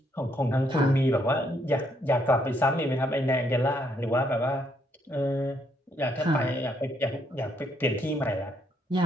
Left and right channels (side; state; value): both; normal; correlation 0.72